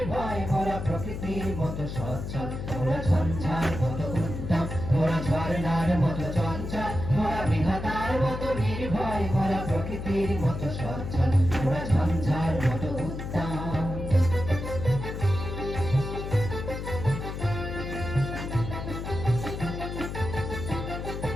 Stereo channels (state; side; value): noise; left; hum, 6 dB below the sound